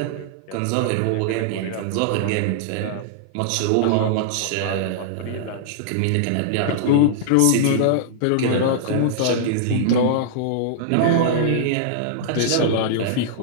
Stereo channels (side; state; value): both; different; correlation -0.01